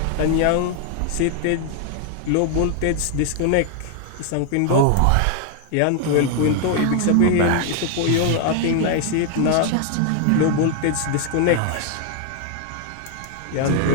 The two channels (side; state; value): both; different; correlation 0.00